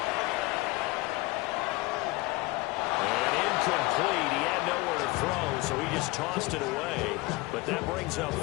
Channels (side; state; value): right; quieter; 22.0 dB